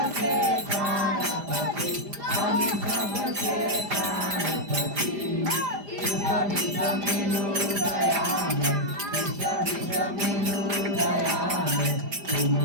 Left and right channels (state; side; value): late; left; 5.0 ms